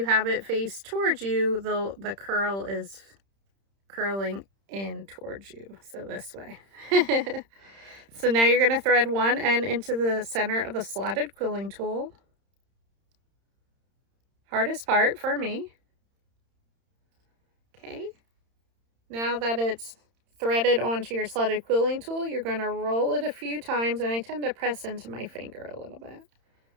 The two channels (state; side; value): late; left; 31 ms